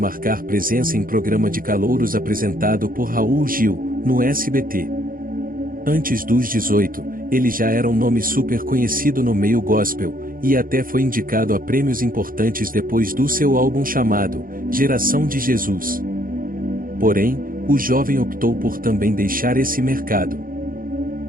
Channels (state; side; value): late; left; 0.41 ms